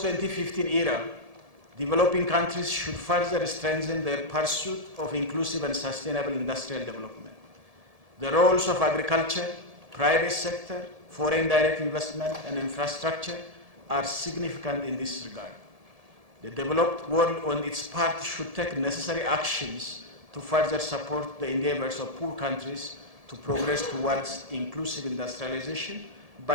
era, developing countries should further strengthen their pursuit of inclusive and sustainable industrial development. The roles of agriculture, private sector, foreign direct investment, and infrastructure are significant in this regard. The developed world on its part should take necessary actions to further support the endeavors of poor countries to progress towards inclusive industrialization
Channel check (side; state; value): left; late; 1.7 ms